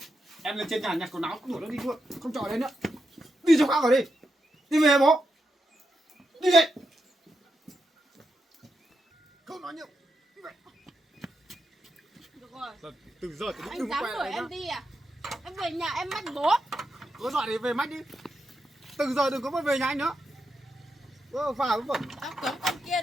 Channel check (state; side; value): normal; both; correlation 0.85